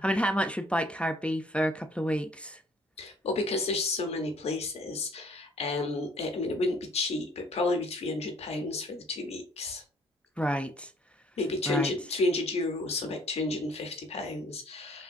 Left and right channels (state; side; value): normal; both; correlation 0.59